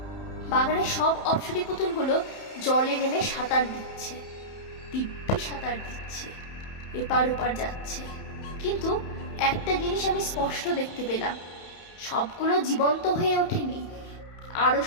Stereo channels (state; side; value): late; right; 31 ms